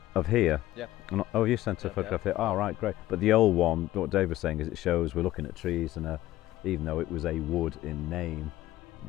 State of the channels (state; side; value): quieter; right; 15.5 dB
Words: Of here? Yeah. Oh, you sent a photograph here. Oh, right, great. But the old one, what Dave was saying is it shows we're looking at trees, and even though it was a wood in name, it